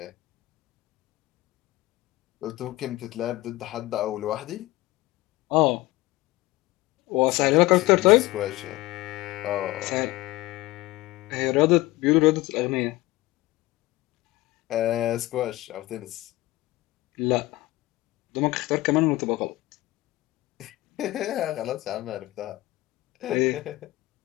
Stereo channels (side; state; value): right; quieter; 18.8 dB